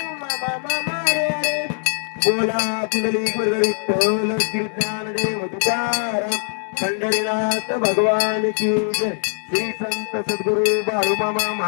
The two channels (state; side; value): silent; right; 59 dB below the other